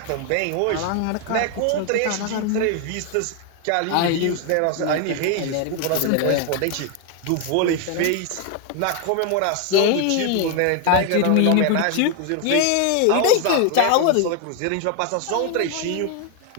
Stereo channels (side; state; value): both; different; correlation 0.01